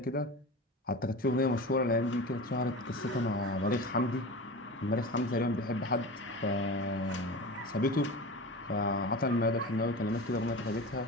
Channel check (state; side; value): normal; both; correlation 0.30